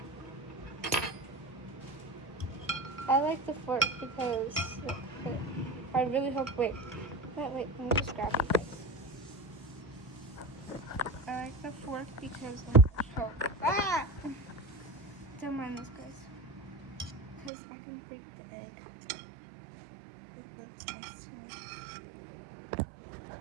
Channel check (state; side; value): drops out; left; at 17.5 s